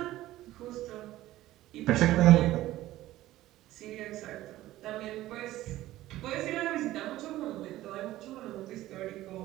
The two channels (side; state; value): left; quieter; 15.5 dB